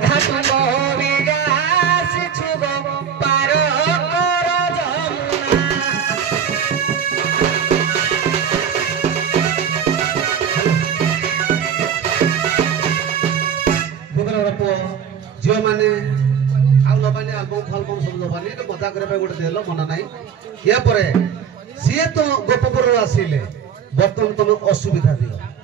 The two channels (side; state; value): left; quieter; 7.6 dB